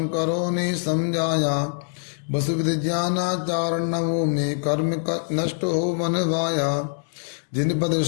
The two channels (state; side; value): silent; right; digital silence